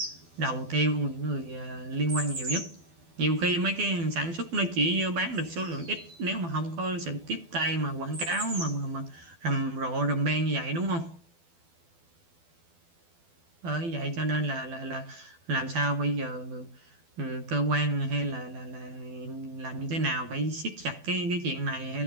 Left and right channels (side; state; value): left; late; 12 ms